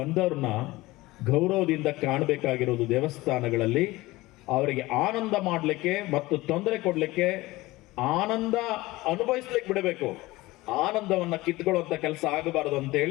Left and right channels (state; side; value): quieter; right; 19.6 dB